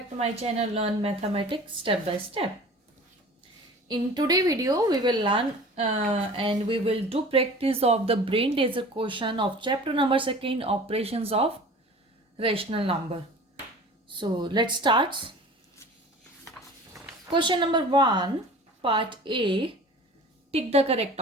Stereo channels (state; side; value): normal; both; correlation 0.42